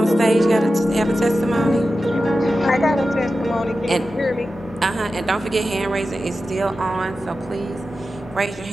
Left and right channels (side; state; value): both; normal; correlation 0.92